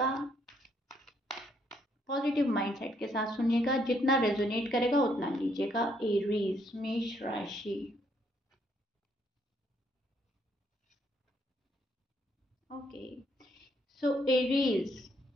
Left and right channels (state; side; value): normal; both; correlation 0.71